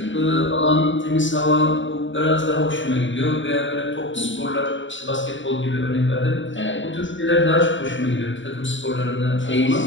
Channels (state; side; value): late; right; 0.55 ms